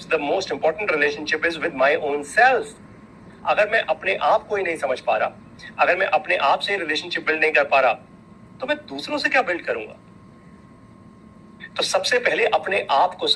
the most important relationship is with my own self. अगर मैं अपने आप को ही नहीं समझ पा रहा, अगर मैं अपने आप से रिलेशनशिप बिल्ड नहीं कर पा रहा, तो मैं दूसरों से क्या बिल्ड करूंगा? तो सबसे पहले अपने आप को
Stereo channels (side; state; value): both; identical; correlation 1.00